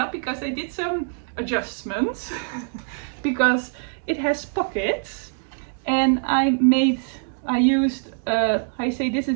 because I did some adjustments because it has pockets, and I used this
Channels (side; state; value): left; silent; digital silence